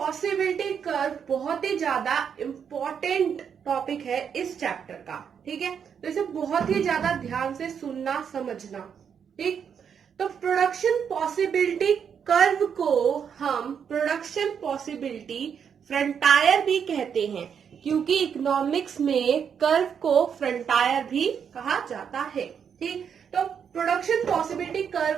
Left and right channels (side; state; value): left; quieter; 7.4 dB